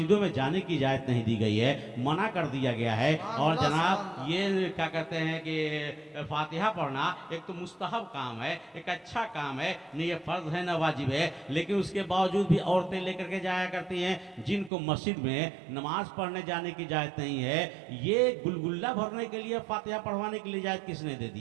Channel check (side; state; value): left; drops out; at 14.7 s